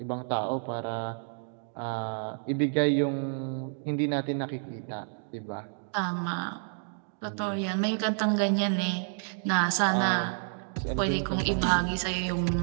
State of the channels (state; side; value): silent; left; digital silence